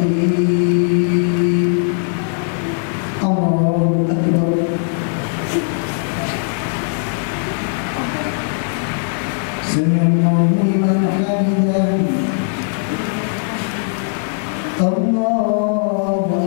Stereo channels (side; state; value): right; silent; digital silence